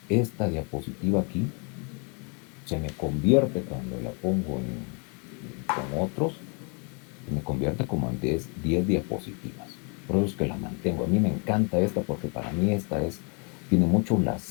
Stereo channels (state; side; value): quieter; right; 35.9 dB